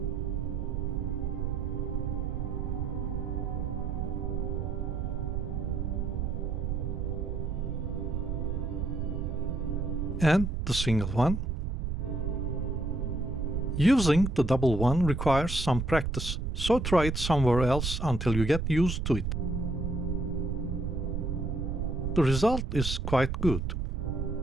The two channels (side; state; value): right; noise; rumble, 1 dB below the sound